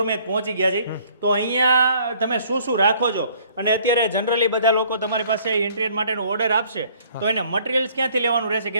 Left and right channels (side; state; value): both; inverted; correlation -0.59